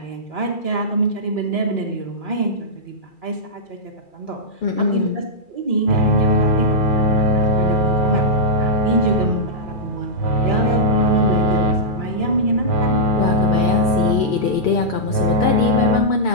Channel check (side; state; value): right; late; 2.4 ms